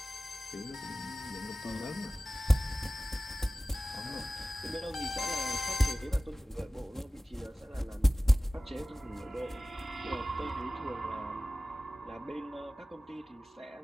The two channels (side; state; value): both; normal; correlation 0.97